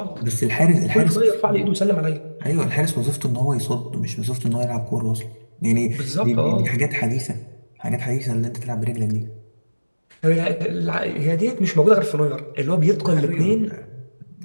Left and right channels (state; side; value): inverted; both; correlation -1.00